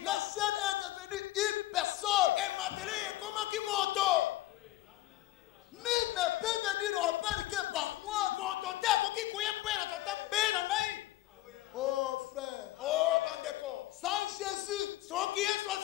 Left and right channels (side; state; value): right; quieter; 16.2 dB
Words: est devenue une personne. Nul ne peut venir au Père que par moi. Oh frère, sans Jésus,